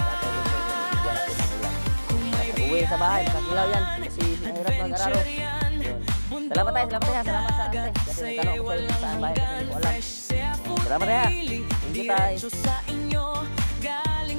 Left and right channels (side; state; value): both; inverted; correlation -1.00